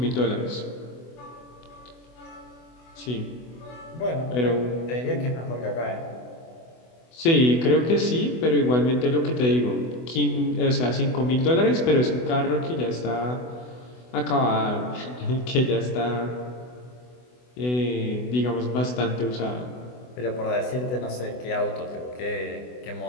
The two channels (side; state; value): right; late; 24 ms